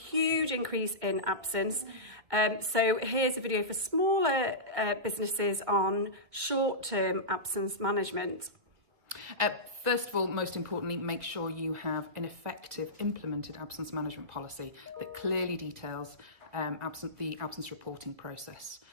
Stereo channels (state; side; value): late; left; 2.3 ms